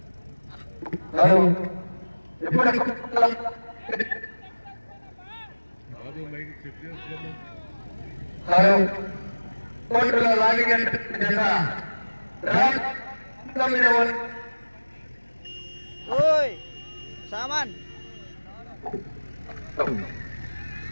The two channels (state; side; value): inverted; both; correlation -1.00